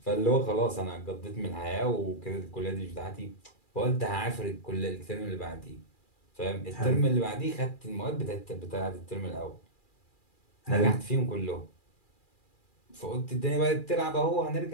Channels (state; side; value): late; right; 2.4 ms